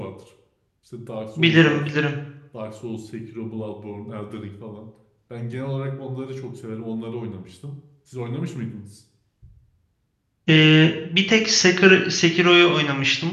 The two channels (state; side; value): identical; both; correlation 1.00